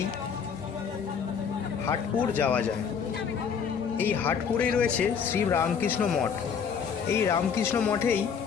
হাটপুর যাওয়া যায়। এই হাটপুরেই রয়েছে শ্রী রামকৃষ্ণ মঠ। এই রামকৃষ্ণ মঠেই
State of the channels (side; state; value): right; quieter; 6.8 dB